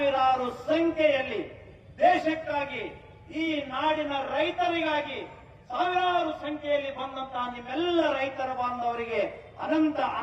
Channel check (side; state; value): both; identical; correlation 1.00